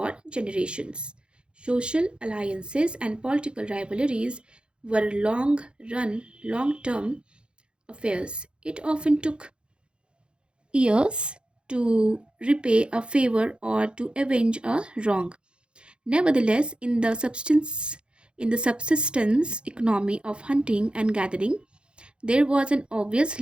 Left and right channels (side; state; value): left; late; 0.054 ms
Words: generations. Social alliances and political rivalries were long run, long term affairs. It often took years to repay a favor or to avenge a wrong. Nevertheless, in the subsistence economy of hunting and gathering, there was an obvious